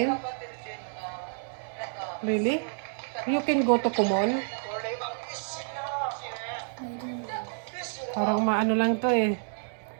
Really? You can go to Kumon? Parang maano lang to eh.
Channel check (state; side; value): silent; left; 58 dB below the other